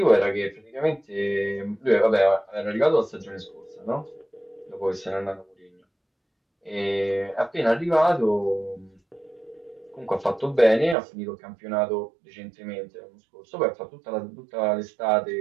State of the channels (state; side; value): drops out; left; at 11.0 s